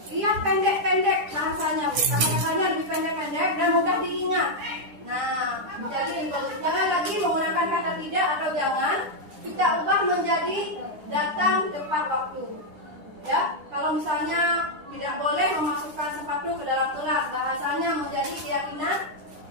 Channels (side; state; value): left; late; 10 ms